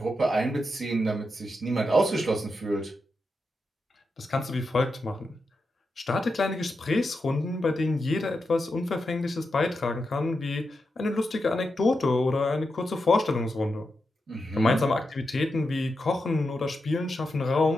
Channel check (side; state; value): both; normal; correlation 0.87